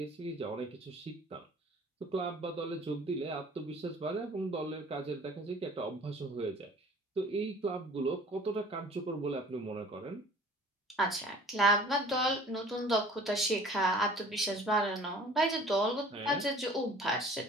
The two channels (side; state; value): both; normal; correlation 0.48